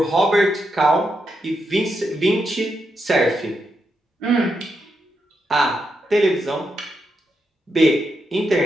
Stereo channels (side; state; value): both; normal; correlation 0.83